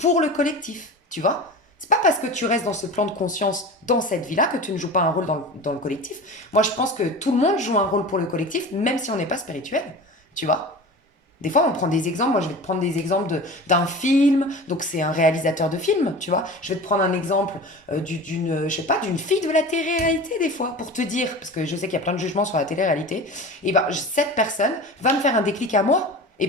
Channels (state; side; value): normal; both; correlation 0.34